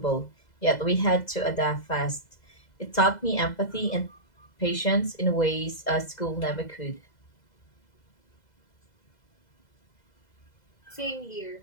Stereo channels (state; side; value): late; right; 2.0 ms